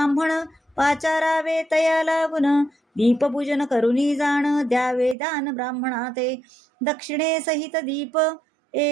पाचारावे तया लागून, दीपपूजन करुनी जाण द्यावे दान ब्राह्मणाते. दक्षिणे सहित दीप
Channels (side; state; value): left; drops out; at 5.2 s